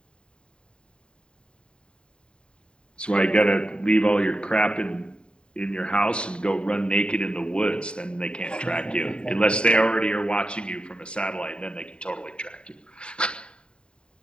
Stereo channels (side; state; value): right; late; 0.051 ms